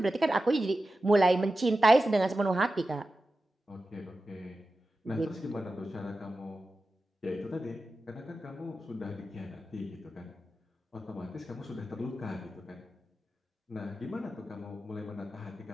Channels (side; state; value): both; normal; correlation 0.93